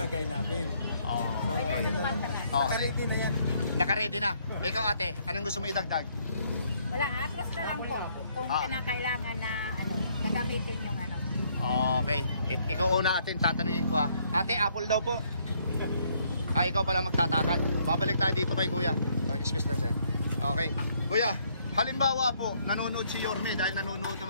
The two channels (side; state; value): both; inverted; correlation -0.68